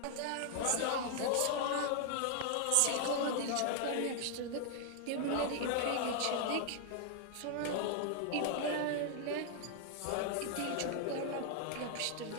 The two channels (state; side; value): different; both; correlation 0.00